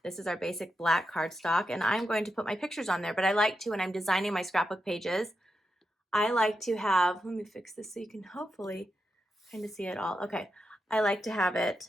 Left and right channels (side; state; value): both; normal; correlation 0.87